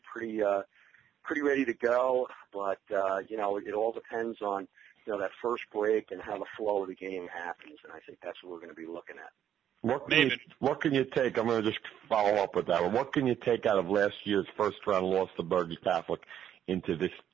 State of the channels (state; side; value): quieter; left; 10.0 dB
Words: ready to go, but it all depends on that first break and how the flow of the game happens, and I think that's what we're going to be looking at. What can you take? I'm going to just follow up with that one. What can you take out of last year's first round loss to Bergen Catholic into